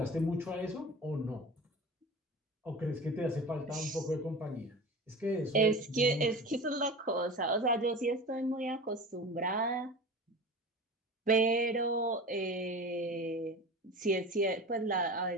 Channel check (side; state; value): both; normal; correlation 0.34